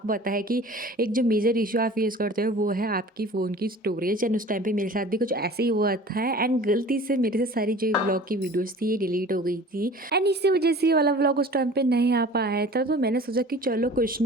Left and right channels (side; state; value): both; normal; correlation 0.43